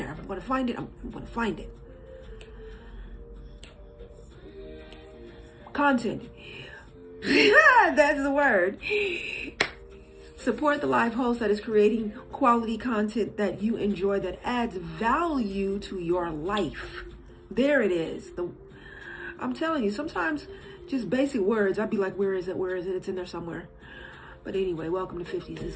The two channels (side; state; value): both; identical; correlation 1.00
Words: I'm gonna find it. I'm gonna find it. Content. That's the word. Support the live host that is creating quality content that you enjoy, that adds value to your life. There it is. I'm telling you, sometimes just basic words, I'd be like, where is it? Where is it? It's in there somewhere. But anyway, welcome to 50s. This